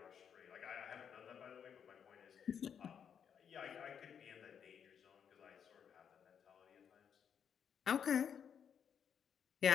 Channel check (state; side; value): quieter; right; 7.8 dB